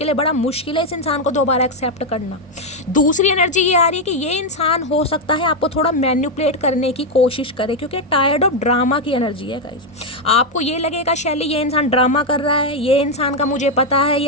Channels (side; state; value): both; normal; correlation 0.03